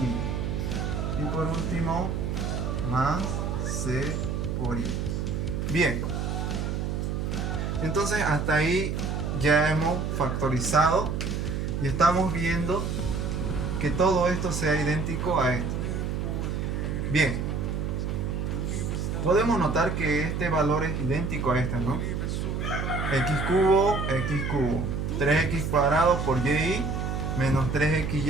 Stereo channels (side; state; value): right; noise; hum, 1 dB below the sound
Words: Y por último más c por y. Bien, entonces hasta ahí ya hemos factorizado y estamos viendo que todo esto sea idéntico a esto. Bien, podemos notar que este valor es idéntico a este, ¿no? X cubo, 3x cuadrado por y menos